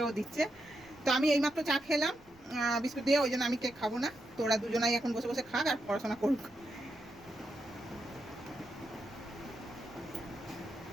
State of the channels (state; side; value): noise; right; rumble, 28 dB below the sound